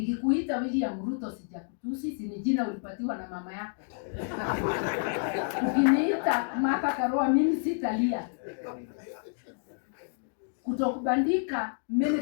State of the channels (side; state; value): right; silent; digital silence